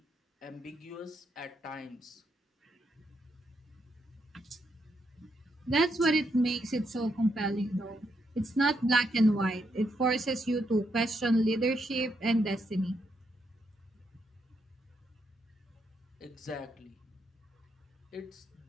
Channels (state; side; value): normal; both; correlation 0.79